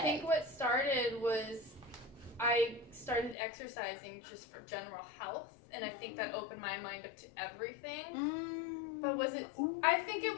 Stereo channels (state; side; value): drops out; right; at 3.4 s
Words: think what started was I started exercising just for general health, and I think that opened my mind up to everything. But was it? I think it